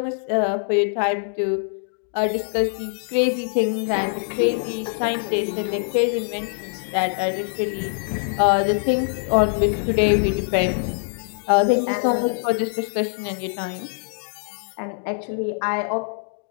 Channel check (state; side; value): silent; right; digital silence